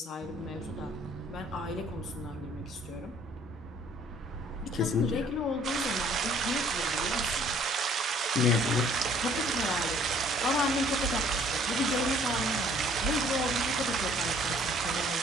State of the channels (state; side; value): normal; both; correlation 0.58